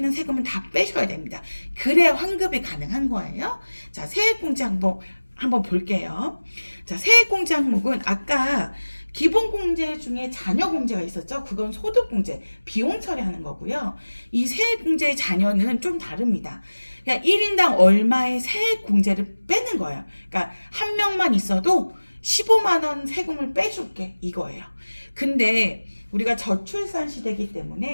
세금은 다 빼셔야 됩니다. 그래야 환급이 가능한 거예요. 자, 세액공제 한번 볼게요. 자, 세액공제 항목은 아까 기본공제 중에 자녀공제가 있었죠. 그건 소득공제, 비용 처리하는 거고요. 이 세액공제의 자녀는 좀 다릅니다. 그냥 1인당 얼마의 세액공제를 빼는 거예요. 그러니까 한 명만 있어도 15만 원 세금을 빼줄게, 이거예요. 근데 우리가 저출산 시대이기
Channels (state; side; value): inverted; both; correlation -1.00